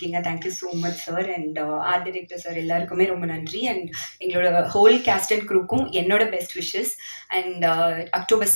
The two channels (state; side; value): inverted; both; correlation -1.00